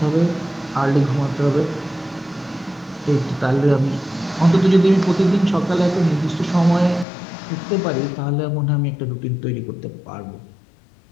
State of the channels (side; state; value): right; drops out; at 7.1 s